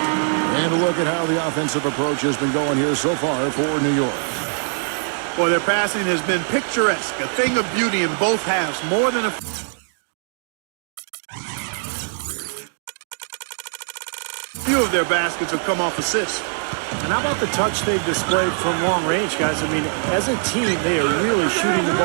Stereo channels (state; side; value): silent; left; 64 dB below the other